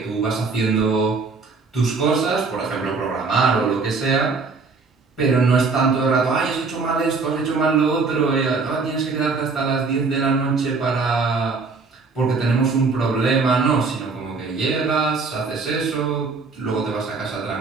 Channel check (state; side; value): quieter; left; 4.4 dB